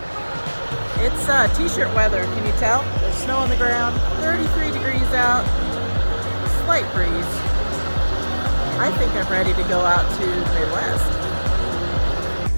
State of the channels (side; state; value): both; inverted; correlation -1.00